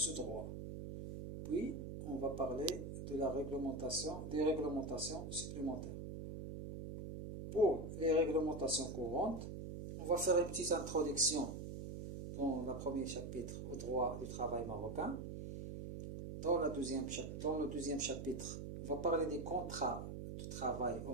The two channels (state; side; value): noise; right; hum, 7 dB below the sound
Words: droit. Puis, on va parler de des réglementations supplémentaires. Pour les réglementations courantes, on va faire une petite introduction dans le premier chapitre au droit du travail marocain. Dans le deuxième chapitre, on va parler des contrats de travail au